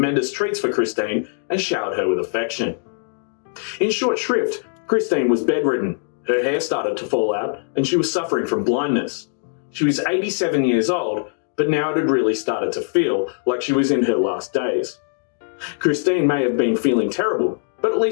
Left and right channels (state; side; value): silent; right; digital silence